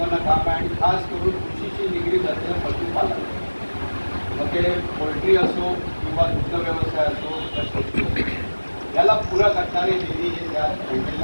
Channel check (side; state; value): both; inverted; correlation -1.00